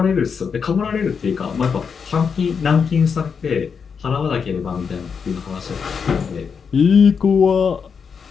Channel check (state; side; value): quieter; right; 6.2 dB